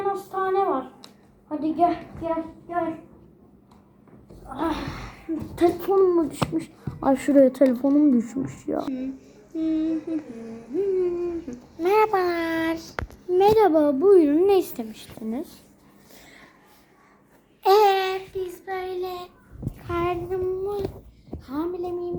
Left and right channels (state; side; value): identical; both; correlation 1.00